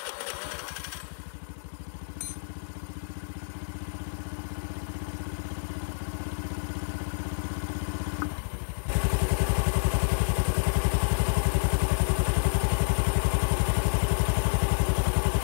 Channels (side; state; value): right; silent; 59 dB below the other